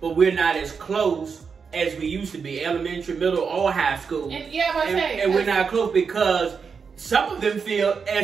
we're not as close as we used to be, elementary, middle, or high school. And we're not close because some of them feel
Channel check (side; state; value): left; quieter; 5.8 dB